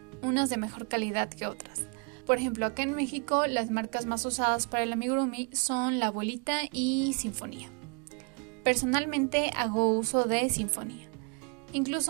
unas de mejor calidad que otras. Por ejemplo, acá en México las marcas más usadas para el amigurumi son La Abuelita y Sinfonía. Personalmente hago uso de Sinfonía.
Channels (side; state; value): left; quieter; 35.4 dB